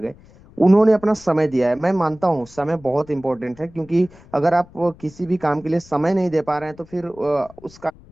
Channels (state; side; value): noise; left; rumble, 24 dB below the sound